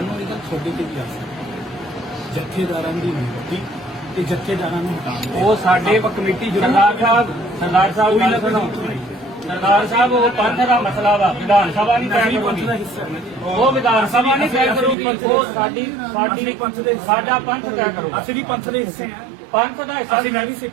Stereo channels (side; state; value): left; drops out; at 15.0 s